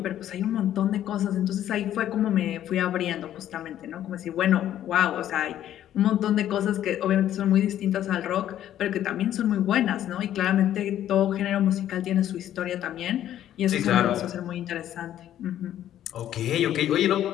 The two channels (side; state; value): right; quieter; 11.6 dB